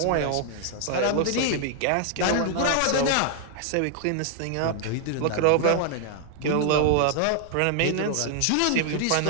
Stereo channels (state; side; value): different; both; correlation 0.00